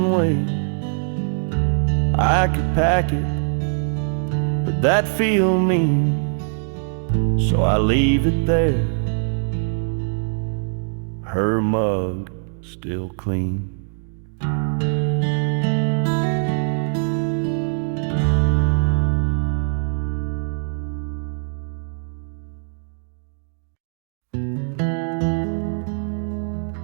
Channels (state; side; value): silent; left; digital silence